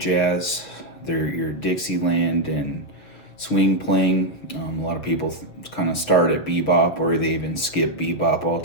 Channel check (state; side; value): late; right; 6.9 ms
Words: your Dixieland and swing playing. A lot of people kind of start at bebop or they even skip bebop